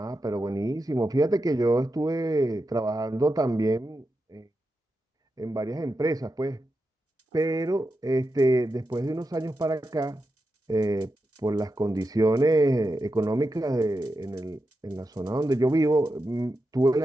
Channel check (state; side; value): normal; both; correlation 0.89